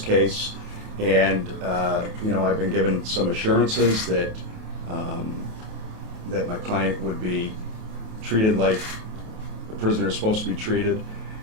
and you know, I've been given some assurances that that my client would be treated like the prisoner is supposed to be treated,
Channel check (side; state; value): left; late; 28 ms